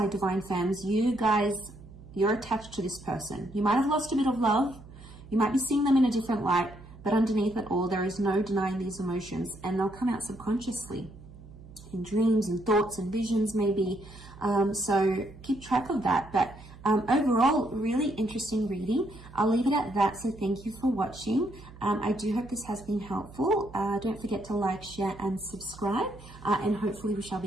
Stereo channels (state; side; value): noise; right; hum, 18 dB below the sound